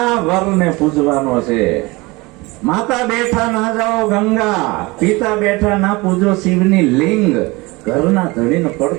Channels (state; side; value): quieter; left; 23.6 dB